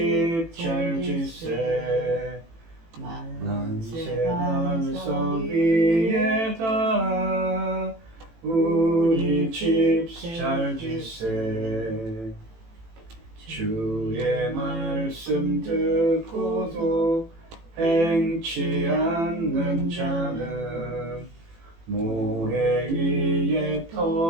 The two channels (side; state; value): left; late; 18 ms